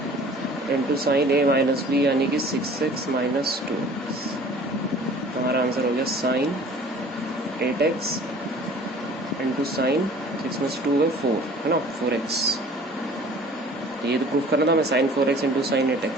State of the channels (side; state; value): both; normal; correlation 0.49